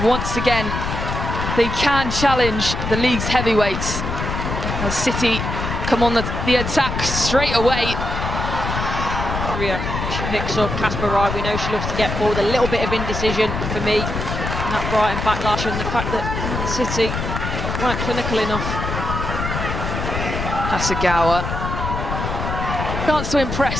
once again they can challenge the league's heavyweights. As City come on the attack straight away. She picks up Casper Rye. We know she loves to get forward. A little bit of indecision for me. And that Brighton backlash and the fact that City weren't clinical enough. Hagawa. Chance to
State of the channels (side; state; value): left; noise; rumble, 4 dB below the sound